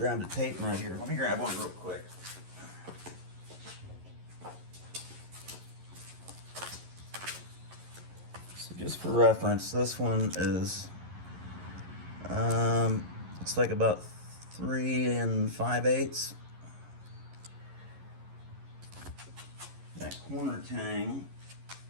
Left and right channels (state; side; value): late; left; 11 ms